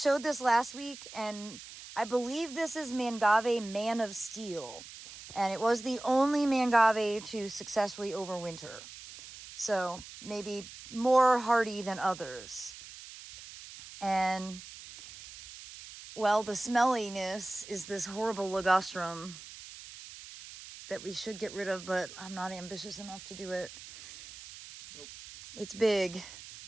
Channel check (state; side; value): noise; right; hiss, 15 dB below the sound